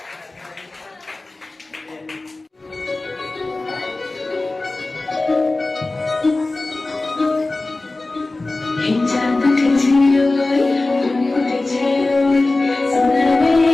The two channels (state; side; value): quieter; right; 3.1 dB